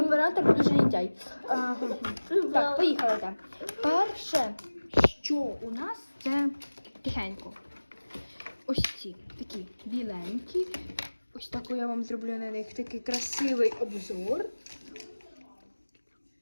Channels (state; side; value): inverted; both; correlation -1.00